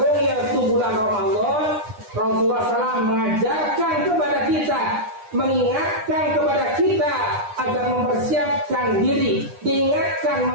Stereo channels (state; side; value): late; left; 9.8 ms